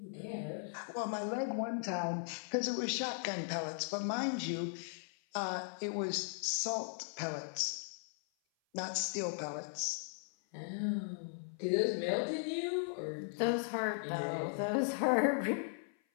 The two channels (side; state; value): right; silent; 53 dB below the other